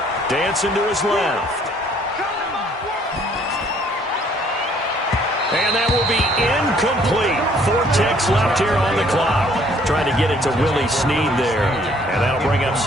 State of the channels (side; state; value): both; normal; correlation 0.61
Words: Dancing to his left. And that will be incomplete. 4 ticks left here on the clock. Trying to get it to Willie Snead there. And that'll bring up